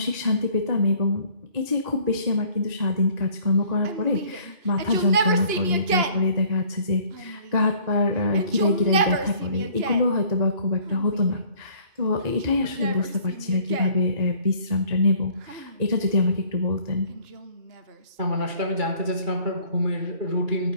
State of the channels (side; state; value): left; late; 2.9 ms